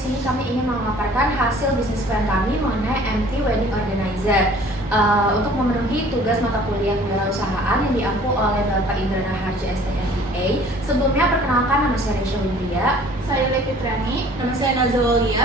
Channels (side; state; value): both; normal; correlation 0.51